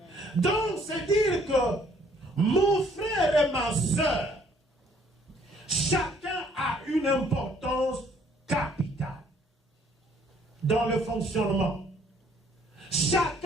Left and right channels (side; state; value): both; normal; correlation 0.62